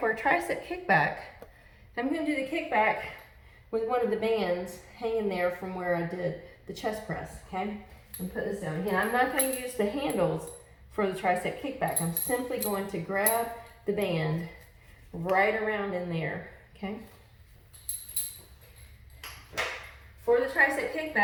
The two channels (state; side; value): identical; both; correlation 1.00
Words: a tricep kickback, I'm going to do the kickback with one of the bands hanging there from where I did the chest press, okay? And put this down. Again, I'm not going to use the handles for the tricep kickback. I'm simply going to grab the band right around in there, okay? For the tricep